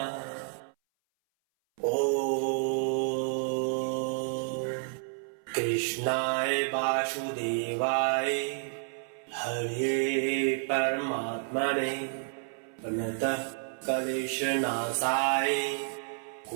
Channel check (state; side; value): silent; left; 58 dB below the other